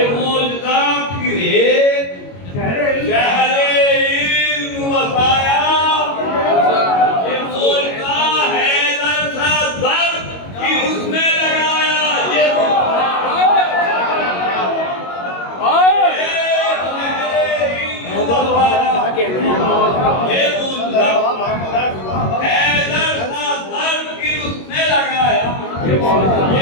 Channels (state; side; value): late; right; 22 ms